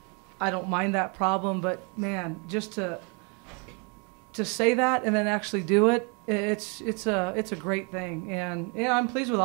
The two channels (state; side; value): quieter; left; 34.2 dB